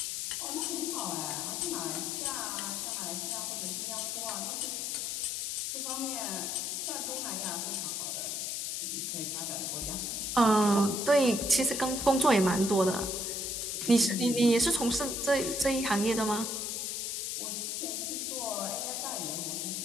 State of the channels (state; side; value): noise; left; hiss, 2 dB below the sound